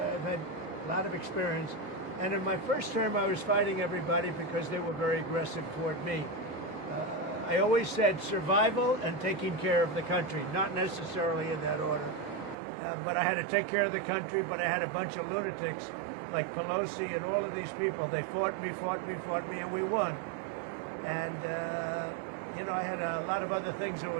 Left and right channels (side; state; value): left; drops out; at 12.6 s